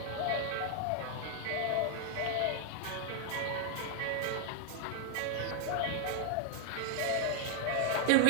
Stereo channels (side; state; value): both; different; correlation -0.01